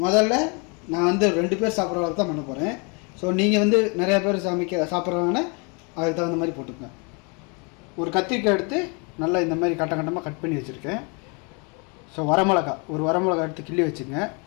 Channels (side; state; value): right; quieter; 33.2 dB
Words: முதல்ல நான் வந்து 2 பேர் சாப்பிட்ற அளவுக்கு தான் பண்ண போகிறேன். ஸோ நீங்கள் வந்து நிறையா பேர் சாப்பிட்றாங்கன்னா அதுக்கு தகுந்த மாதிரி போட்டுக்கோங்க. ஒரு கத்திரிக்காய் எடுத்து நல்லா இந்த மாதிரி கட்டமாக கட் பண்ணி வச்சுருக்கேன். ஸோ ஒரு வரமிளகா எடுத்து கிள்ளி வச்சுங்க.